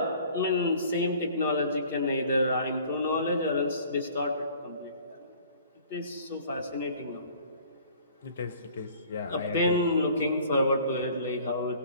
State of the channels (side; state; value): both; inverted; correlation -0.51